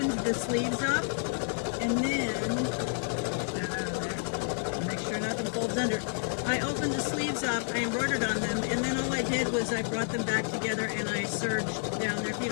the sleeves up, and then, make sure nothing folds under. I opened the sleeves up, I embroidered on them, and then all I did was I brought them back together and I serged down there. If you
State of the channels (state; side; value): silent; right; 58 dB below the other